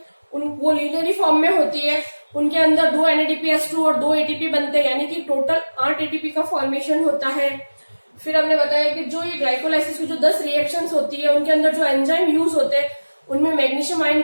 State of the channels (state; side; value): inverted; both; correlation -1.00